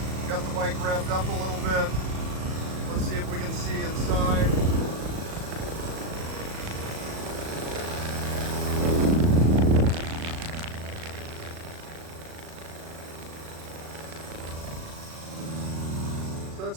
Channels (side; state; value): left; late; 37 ms